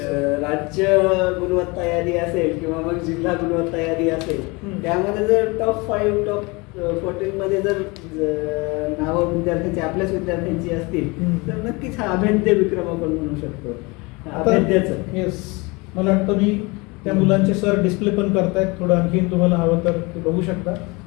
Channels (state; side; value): quieter; right; 26.3 dB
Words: राज्य गुणवत्ता यादी असेल किंवा मग जिल्हा गुणवत्ता यादी असेल, त्यामध्ये जर टॉप 5 टॉप 14 मध्ये जर नावं विद्यार्थ्यांची आपल्याच विद्यार्थ्यांची असतील तर नक्कीच हा अभेद्य विक्रम आपण म्हणू शकतो. अभेद्याचं. येस, मला वाटतं मी त्या मुलांचे सर डिस्प्ले पण करतायत, थोडं आणखीन तुम्हाला हवं तर ते बघू शकता.